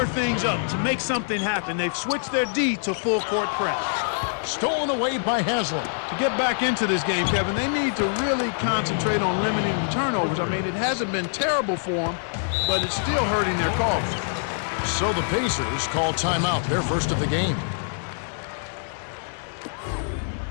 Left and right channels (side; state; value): right; silent; digital silence